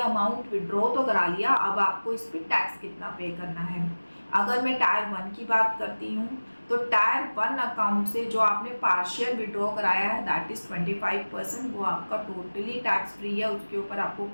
अमाउंट विड्रॉ तो करा लिया, अब आपको इस पर टैक्स कितना पे करना है। अगर मैं टायर 1 की बात करती हूँ तो टायर 1 अकाउंट से जो आपने पार्शियल विड्रॉ कराया है दैट इज 25%, वो आपका टोटली टैक्स फ्री है, उसके ऊपर आपको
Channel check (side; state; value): both; inverted; correlation -1.00